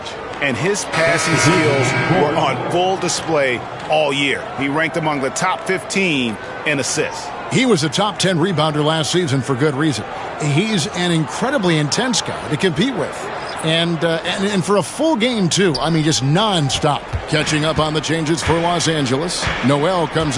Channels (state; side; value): identical; both; correlation 1.00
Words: And his passing skills were on full display all year. He ranked among the top 15 in assists. He was a top 10 rebounder last season for good reason. He's an incredibly intense guy to compete with. And for a full game, too. I mean, just nonstop. Catching up on the changes for Los Angeles. Noel comes